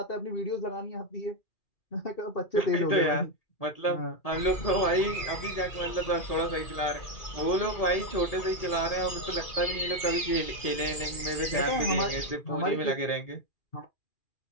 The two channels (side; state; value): right; late; 2.4 ms